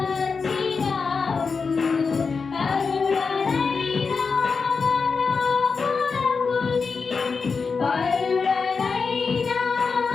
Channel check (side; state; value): right; quieter; 5.0 dB